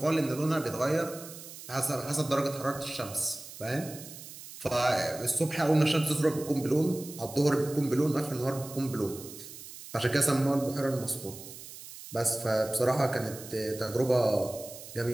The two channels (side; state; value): right; noise; hiss, 14 dB below the sound